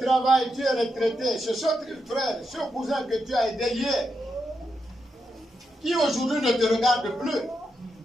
travail, tu es retraité. C'est ce frère, ce cousin que tu as aidé hier, qui aujourd'hui ne te regarde plus.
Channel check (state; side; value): normal; both; correlation 0.84